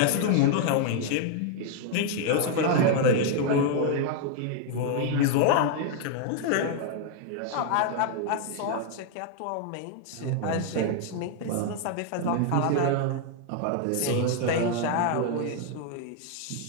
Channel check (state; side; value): different; both; correlation 0.00